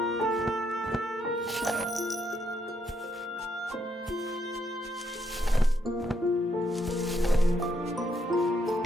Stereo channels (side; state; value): both; normal; correlation 0.76